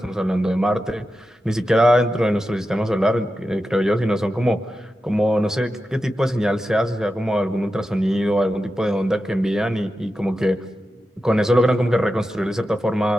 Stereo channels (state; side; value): normal; both; correlation 0.91